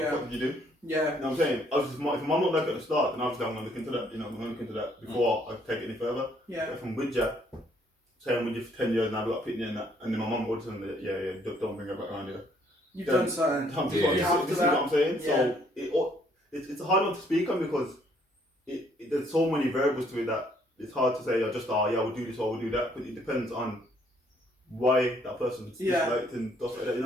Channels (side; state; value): both; normal; correlation 0.65